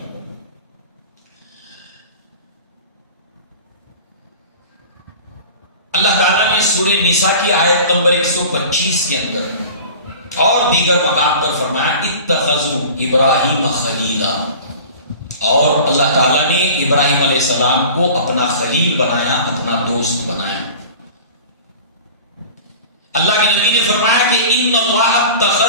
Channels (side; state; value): both; inverted; correlation -0.40